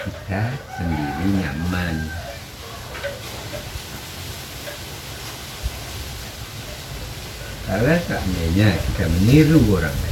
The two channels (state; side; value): identical; both; correlation 1.00